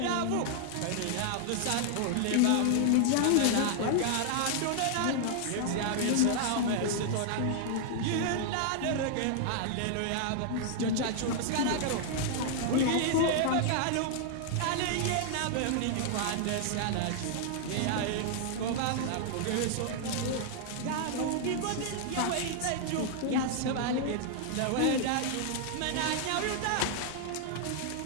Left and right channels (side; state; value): both; different; correlation 0.00